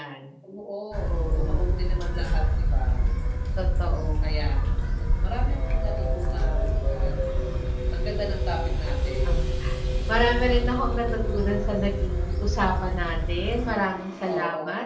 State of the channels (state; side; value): identical; both; correlation 1.00